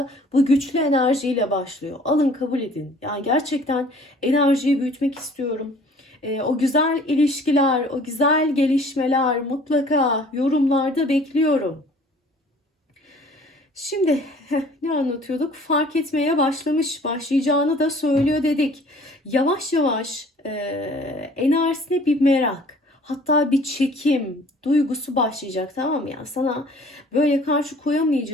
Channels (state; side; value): normal; both; correlation 0.52